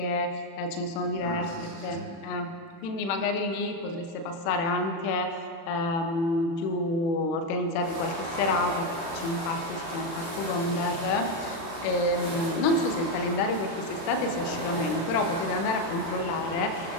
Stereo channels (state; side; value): late; right; 36 ms